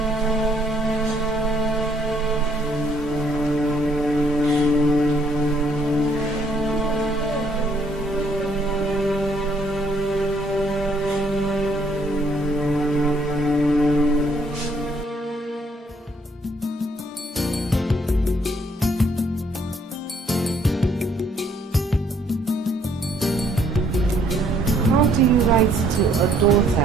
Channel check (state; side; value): normal; both; correlation 0.66